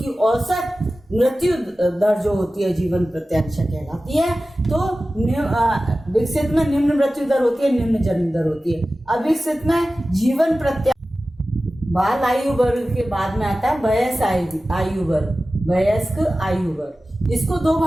औसत मृत्यु दर जो होती है जीवन प्रत्याशा कहलाती है। तो विकसित में निम्न मृत्यु दर होती है, निम्न जन्म दर होती है। अविकसित में जीवन प्रत्याशा। बाल आयु वर्ग के बाद में आता है वयस्क आयु वर्ग, वयस्क आयु वर्ग। इसको 2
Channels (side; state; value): both; normal; correlation 0.95